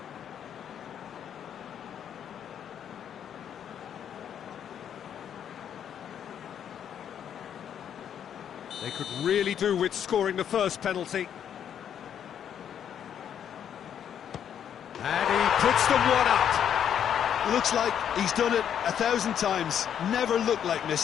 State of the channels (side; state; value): right; quieter; 9.0 dB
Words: They could really do with scoring the first penalty. And he puts them one up. Looks like he's done it 1,000 times. Never looked like